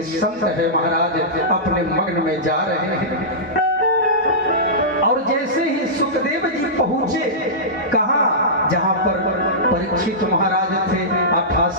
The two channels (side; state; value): both; normal; correlation -0.16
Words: संत है महाराज अपने मग्न में जा रहे हैं। और जैसे ही सुखदेव जी पहुंचे, कहा जहां पर परीक्षित महाराज थे,